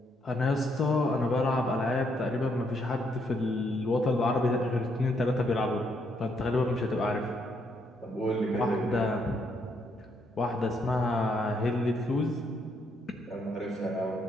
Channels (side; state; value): both; normal; correlation 0.74